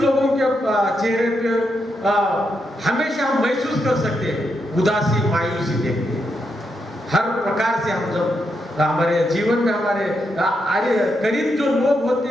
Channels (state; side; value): normal; both; correlation 0.82